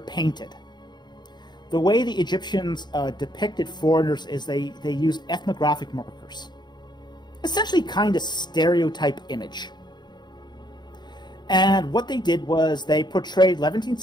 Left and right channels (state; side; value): late; right; 0.21 ms